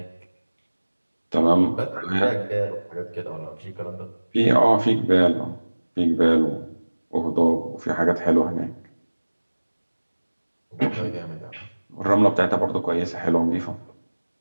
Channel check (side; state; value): both; inverted; correlation -1.00